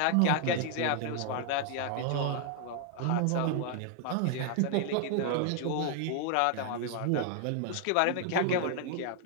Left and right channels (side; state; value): both; different; correlation 0.00